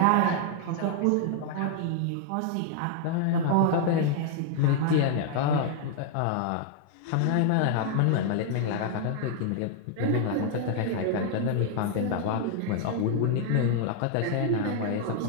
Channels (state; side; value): different; both; correlation 0.00